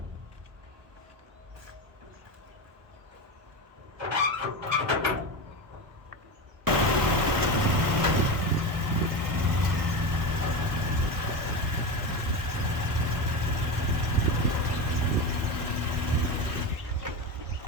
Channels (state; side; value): late; left; 1.1 ms